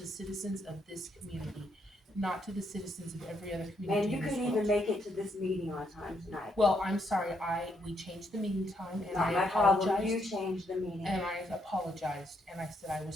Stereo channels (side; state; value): both; normal; correlation 0.76